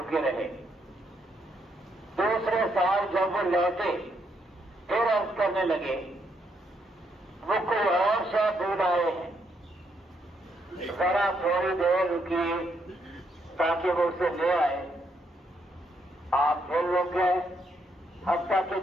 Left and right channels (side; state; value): both; normal; correlation 0.75